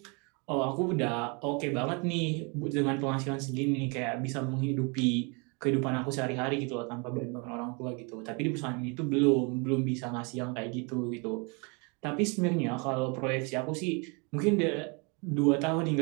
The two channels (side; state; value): left; quieter; 32.3 dB